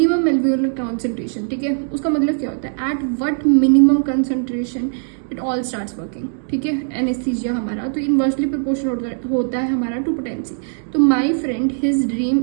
एल्वियोलर कॉन्सेंट्रेशन, ठीक है। उसका मतलब क्या होता है, at what minimum concentration it all starts working, ठीक है। एनेस्थीजिया हमारा तो इन्वर्सली प्रोपोर्शनल होता है हमारा टू पोटेंसी। तो my friend his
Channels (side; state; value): left; silent; 66 dB below the other